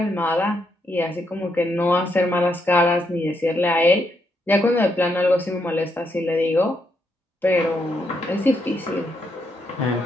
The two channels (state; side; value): normal; both; correlation 0.78